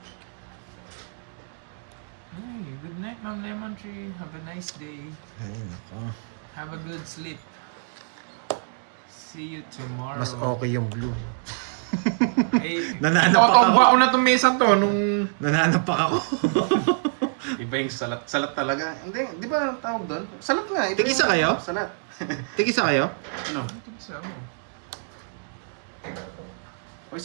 Hey, good night, Ma'am Lemon Tree. Have a nice day. Ay, nako. Have a good sleep. See you tomorrow. Mas okay yung blue. Eh, Nananapak nakatamba ko na itong mesa to nung... Nananapak ako. Iba yung salat. Salat talaga. Hindi, di ba tawag doon? Salat nga. Iba Tig-isa yung kayo? Salat. Tig-isa kayo? Ano? Isa mo. O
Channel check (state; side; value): silent; left; 61 dB below the other